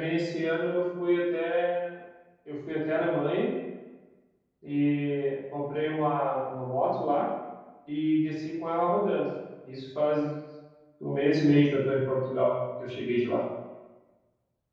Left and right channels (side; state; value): both; identical; correlation 1.00